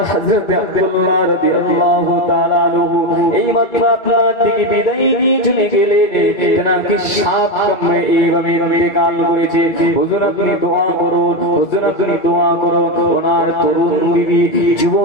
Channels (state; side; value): late; right; 2.3 ms